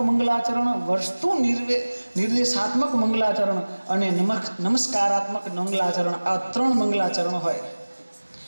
મંગલાચરણ, વસ્તુ નિર્દેશાત્મક મંગલાચરણ અને નમસ્કારાત્મક મંગલાચરણ. આ 3 મંગલાચરણ હોય.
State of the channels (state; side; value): inverted; both; correlation -1.00